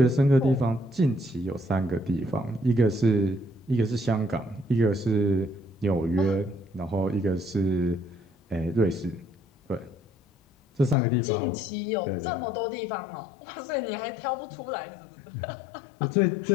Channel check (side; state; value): right; drops out; at 11.0 s